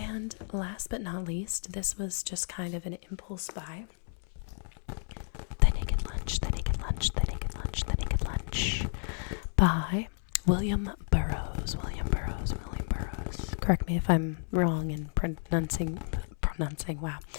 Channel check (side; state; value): right; silent; 57 dB below the other